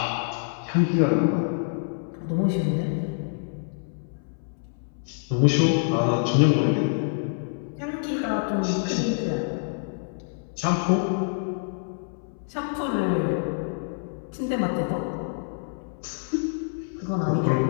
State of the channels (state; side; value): silent; right; 61 dB below the other